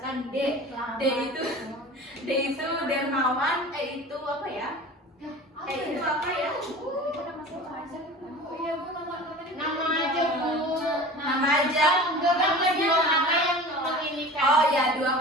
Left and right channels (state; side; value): normal; both; correlation 0.38